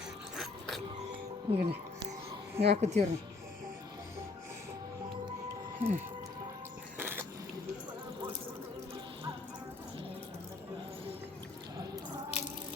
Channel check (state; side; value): quieter; right; 3.7 dB